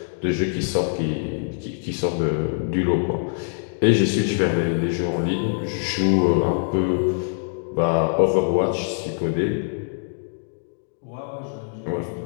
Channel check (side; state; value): right; silent; digital silence